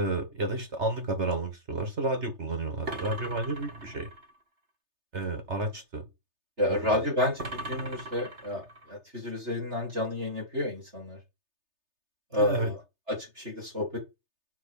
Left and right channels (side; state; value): left; late; 3.3 ms